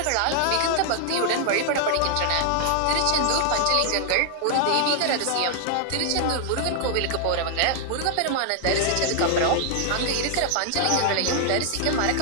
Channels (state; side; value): different; both; correlation 0.00